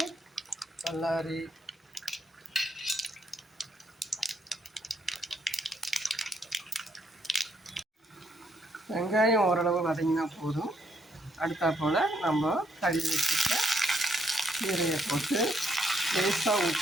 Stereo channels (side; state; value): both; normal; correlation 0.73